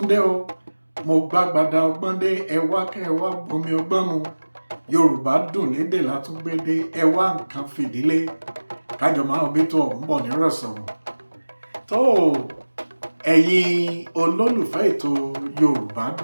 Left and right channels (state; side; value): inverted; both; correlation -1.00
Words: dé o, mo gbàgbàdà ọgbọ́n dé, ẹ wá kẹ́ ẹ wá gbomi ọgbọ́n mu. Yorùbá dùn lédè látúngbédé, ẹ wá nǹkan fìdílé, kájọ máa bí tó ọ̀hún bọ̀ nírọ̀sọ̀rọ̀. tó ẹ̀yin olólùfẹ́ ètò Yorùbá